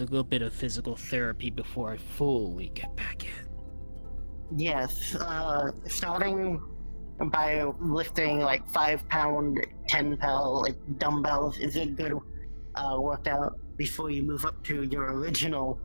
bit of physical therapy before I fully get back in. Yes, starting by lifting like 5-pound, 10-pound like dumbbells is a good workout before you move up to your original,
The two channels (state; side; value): inverted; both; correlation -1.00